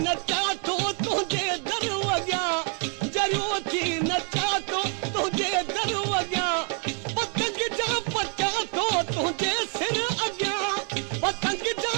नचा तो तुझे दरवाजा जरियो थी नचा तो तुझे दरवाजा पतंग जा पचा तो तुझे सिर अॻियां पतंग जा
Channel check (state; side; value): quieter; left; 39.6 dB